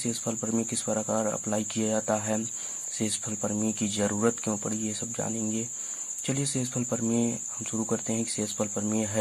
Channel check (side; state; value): both; identical; correlation 1.00